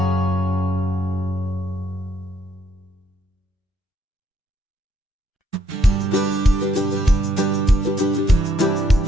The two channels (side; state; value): both; normal; correlation 0.70